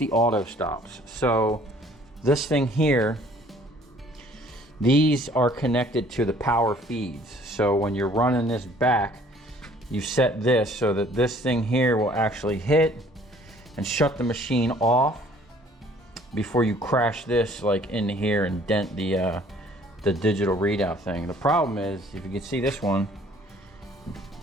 auto stops. So this thing here, These are connected to the power feeds. So when you're running this back, you set this so that this thing here will actually hit and shut the machine off before you crash this like into here and dent the digital readout thing. The problem is, if you can see this one,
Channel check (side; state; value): both; normal; correlation 0.56